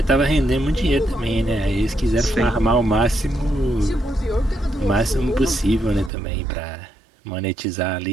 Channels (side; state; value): left; drops out; at 6.1 s